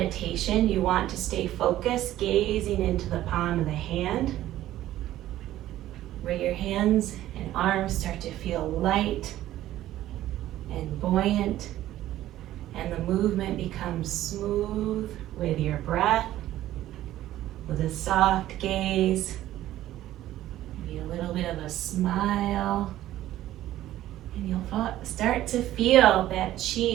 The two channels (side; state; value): left; quieter; 13.9 dB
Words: you want to stay focused, gazing into the palm of the hand, where your hands and arms start to feel light and buoyant, and the movement becomes smooth with your breath, with a soft gaze, maybe a little bit of a smile, and you'll start to feel that